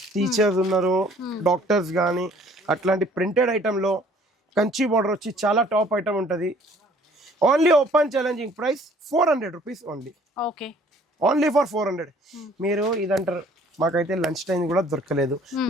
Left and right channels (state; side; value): normal; both; correlation 0.56